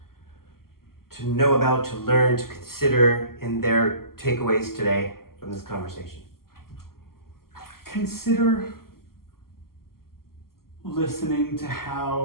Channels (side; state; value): right; late; 0.92 ms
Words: to know about, to learn, to consider in their takeaways today from this conversation? Consider listening to